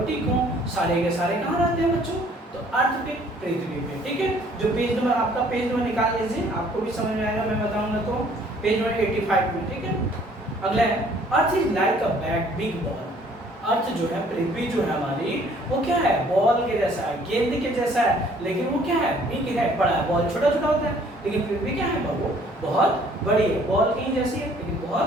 हो, सारे के सारे कहाँ रहते हैं बच्चों? तो अर्थ पे, पृथ्वी पे। ठीक है, जो पेज नंबर आपका पेज नंबर निकाल लीजिए, आपको भी समझ में आएगा, मैं बताऊंगा तो पेज नंबर 85 में। ठीक है, अगला है earth is like a big ball. Earth जो है, पृथ्वी जो है हमारी, वो क्या है, बॉल के जैसा है, गेंद के जैसा है, लेकिन वो क्या है, बिग है, बड़ा है। बॉल छोटा छोटा होता है, लेकिन पृथ्वी क्या है, वो बहुत बड़ी है। बॉल कहीं जैसी है लेकिन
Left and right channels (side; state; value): both; normal; correlation 0.59